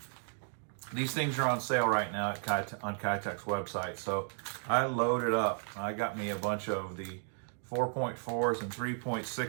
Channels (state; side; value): silent; left; 55 dB below the other